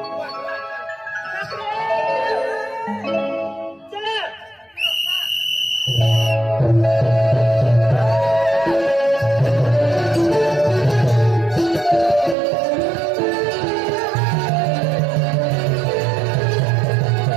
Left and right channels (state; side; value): drops out; left; at 12.4 s